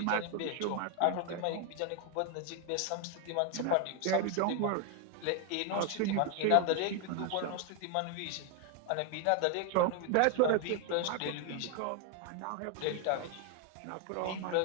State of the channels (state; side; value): different; both; correlation 0.01